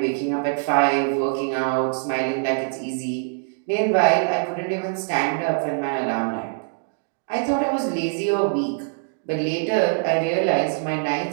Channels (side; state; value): left; silent; 63 dB below the other